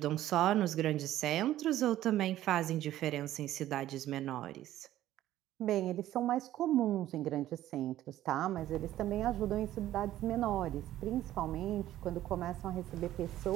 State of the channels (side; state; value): left; quieter; 13.5 dB